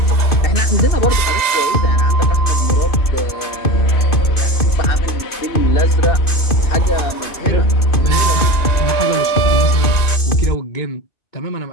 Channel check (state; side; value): late; right; 2.5 ms